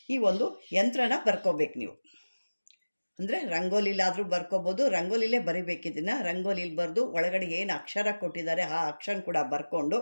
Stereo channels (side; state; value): both; inverted; correlation -1.00